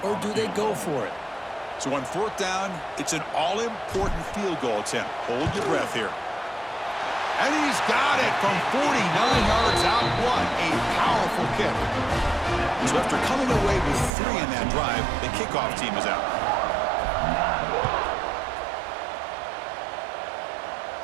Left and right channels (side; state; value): left; drops out; at 14.1 s